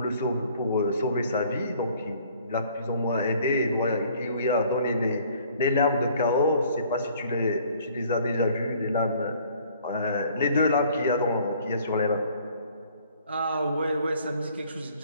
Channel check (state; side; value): inverted; both; correlation -0.57